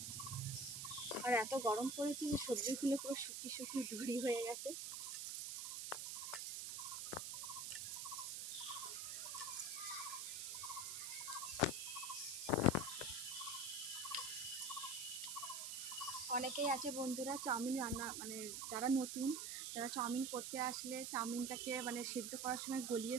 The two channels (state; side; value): noise; right; hiss, 4 dB below the sound